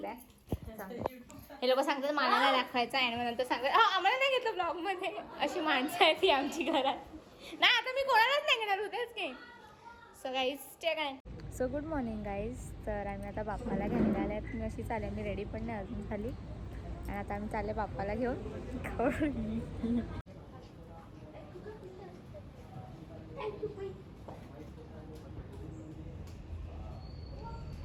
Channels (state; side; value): identical; both; correlation 1.00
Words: हे लोक सांगतात मला नाही दाखवायचा आणि मग नंतर सांगतात आम्हाला नाही घेतलं ब्लॉगमध्ये. अशी माणसं आहेत ती आमची घरात. नाही आता मी कोणालाच नाही घेणार होतेच की. सो गाईज स्टे काय. So good morning guys. तर आम्ही आता बाप्पाला घ्यायला आल्या आहेत. मी अशी चालेल, मी रेडी पण नाही अजून झाली. आणि आता आम्ही चालले बाप्पाला घेऊन.